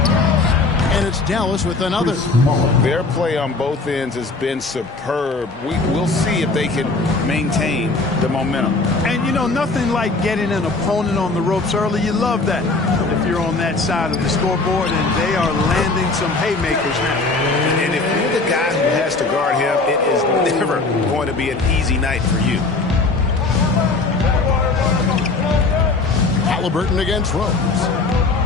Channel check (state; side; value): quieter; right; 3.6 dB